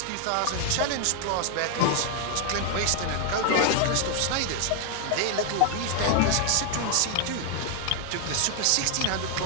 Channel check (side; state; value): both; different; correlation 0.00